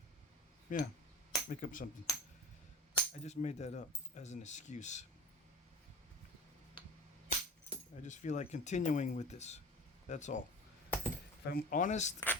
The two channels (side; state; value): both; normal; correlation 0.34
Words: Yeah, make up something. I just made that up as an excuse. I just feel like continuing with this. That's all. If I'm honest,